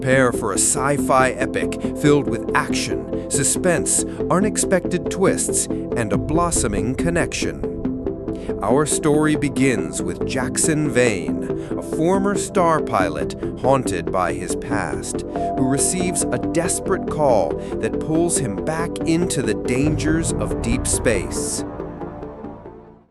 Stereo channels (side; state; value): both; identical; correlation 1.00